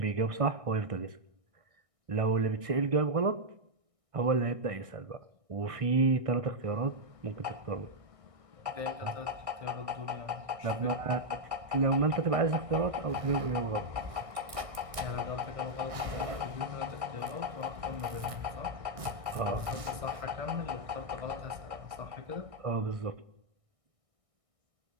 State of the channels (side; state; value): left; late; 1.6 ms